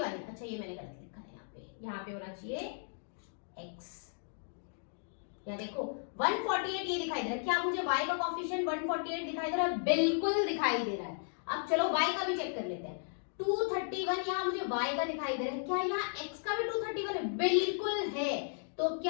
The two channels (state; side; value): silent; right; digital silence